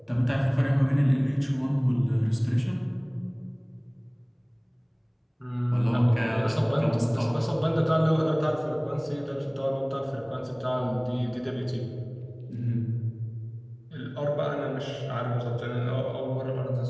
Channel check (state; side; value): identical; both; correlation 1.00